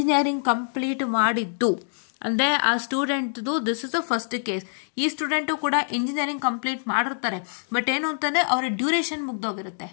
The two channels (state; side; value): silent; right; digital silence